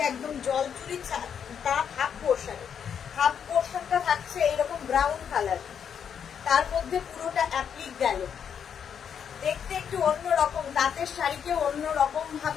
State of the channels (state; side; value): quieter; right; 7.8 dB